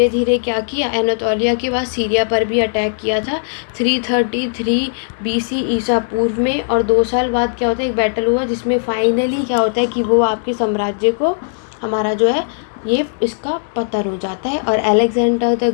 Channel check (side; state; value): right; silent; 68 dB below the other